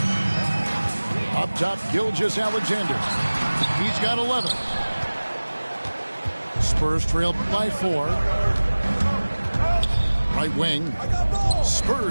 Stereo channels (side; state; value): both; inverted; correlation -1.00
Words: Up top, Gilgeous-Alexander. He's got 11. Spurs trail by 4. Right wing.